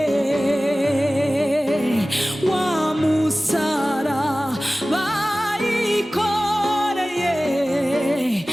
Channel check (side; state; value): both; normal; correlation 0.97